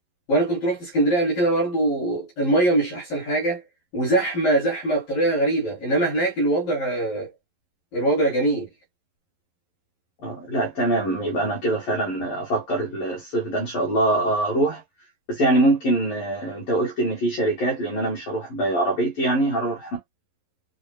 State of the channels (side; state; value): right; late; 11 ms